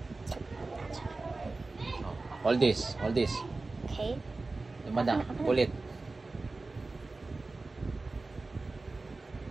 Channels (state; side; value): quieter; left; 3.5 dB